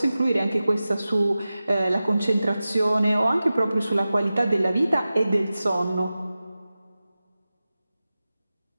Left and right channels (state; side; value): inverted; both; correlation -0.95